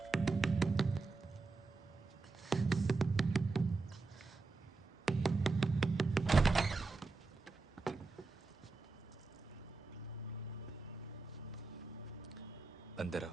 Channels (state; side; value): quieter; left; 3.8 dB